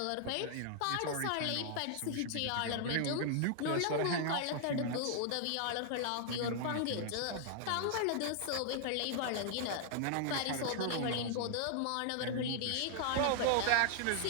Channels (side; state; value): both; different; correlation 0.00